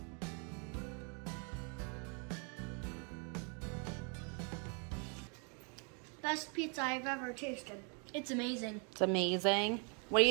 Best pizza I've ever tasted. It's amazing. It's amazing. What do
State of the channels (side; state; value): left; quieter; 37.2 dB